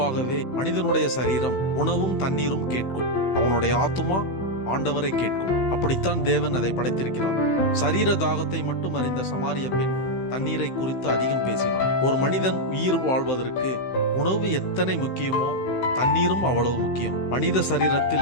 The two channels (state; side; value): late; right; 16 ms